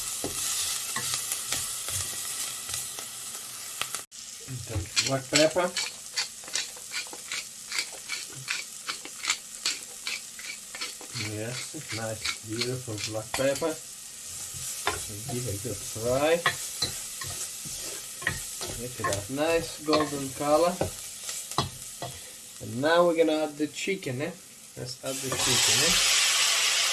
Black pepper. Yes, nice, beautiful black pepper. So give it a good fry. Look at that, nice golden color. And now we're gonna add the chicken. Let's add the chicken.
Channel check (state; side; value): identical; both; correlation 1.00